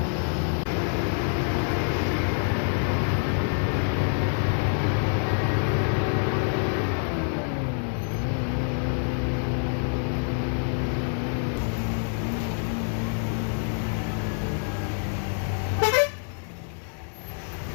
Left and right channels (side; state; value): right; silent; 55 dB below the other